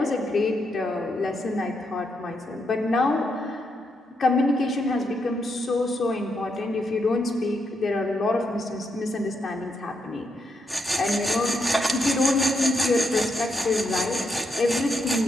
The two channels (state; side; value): normal; both; correlation 0.80